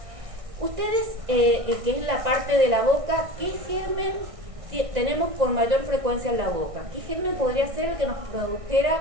Ustedes, que es la parte de la boca, ¿qué germen tenemos con mayor frecuencia en la boca? ¿Qué germen podría ser el que nos produjera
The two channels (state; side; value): late; left; 1.6 ms